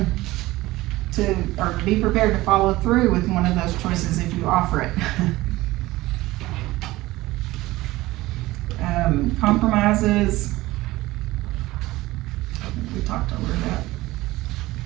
to, or be prepared to follow through with one of those choices if you offer it. Compromises, I think we talked over that.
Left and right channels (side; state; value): left; quieter; 18.5 dB